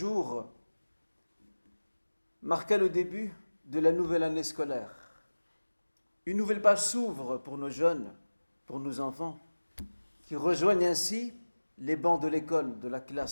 marqua le début de la nouvelle année scolaire. Une nouvelle page s'ouvre pour nos jeunes, pour nos enfants, qui rejoignent ainsi les bancs de l'école, de la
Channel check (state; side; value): inverted; both; correlation -1.00